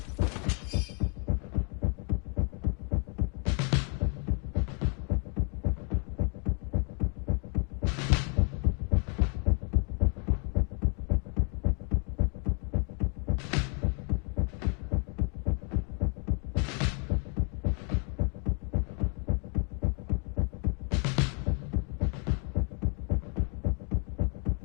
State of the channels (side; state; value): right; quieter; 36.6 dB